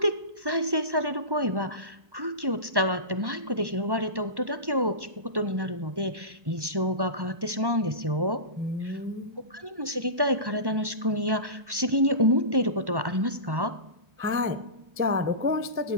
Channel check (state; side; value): late; left; 1.1 ms